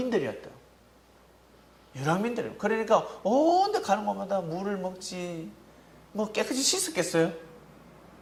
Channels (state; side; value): identical; both; correlation 1.00